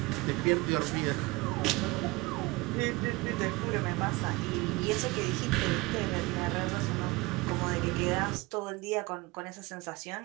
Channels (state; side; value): quieter; left; 23.2 dB